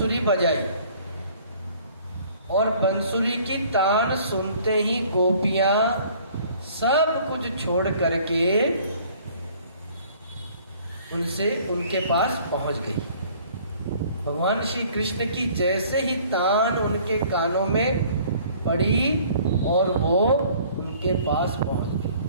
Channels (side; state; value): both; inverted; correlation -0.54